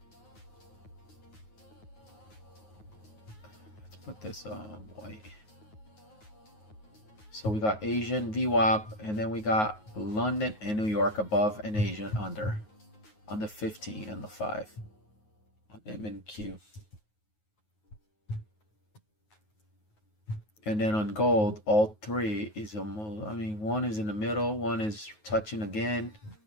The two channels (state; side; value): late; right; 9.4 ms